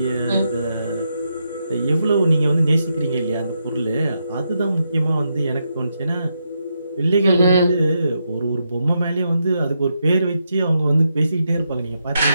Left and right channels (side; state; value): both; inverted; correlation -0.82